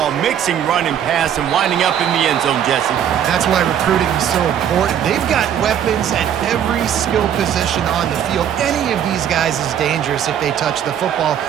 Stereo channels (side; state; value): left; quieter; 9.5 dB